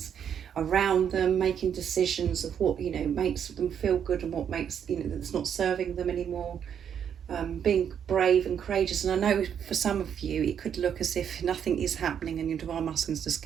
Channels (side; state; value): left; quieter; 8.4 dB